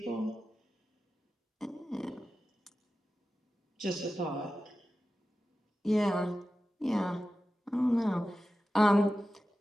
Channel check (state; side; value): normal; both; correlation 0.94